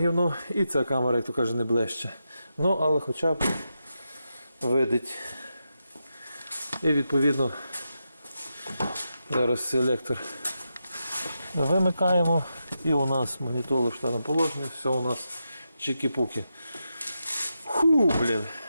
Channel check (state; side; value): inverted; both; correlation -0.87